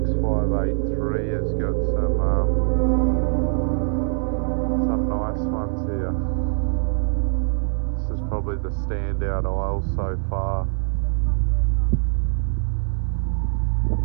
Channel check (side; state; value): left; silent; 61 dB below the other